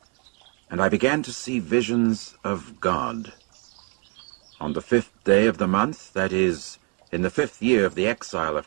and I began to see visions of God. On the 5th day of the month, that is, in the 5th year of the exile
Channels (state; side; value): quieter; left; 32.1 dB